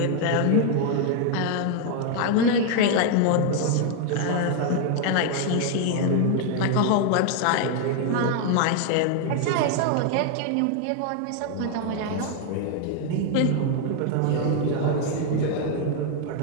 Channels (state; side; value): different; both; correlation 0.00